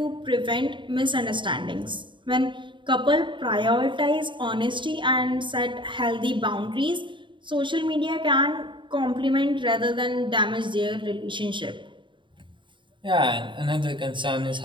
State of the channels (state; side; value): late; left; 0.23 ms